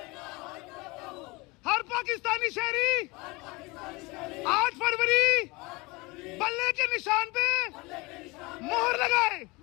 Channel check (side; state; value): right; quieter; 24.6 dB